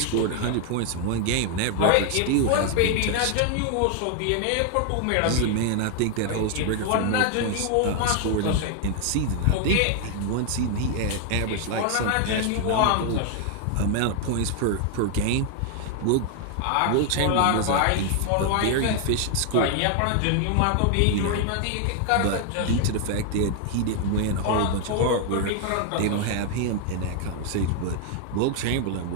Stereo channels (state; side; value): different; both; correlation 0.00